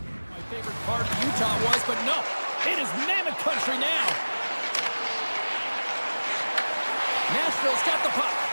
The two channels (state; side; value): inverted; both; correlation -1.00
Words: My favorite part of Utah was, but no, it is Mammoth country now. Nashville's got the puck.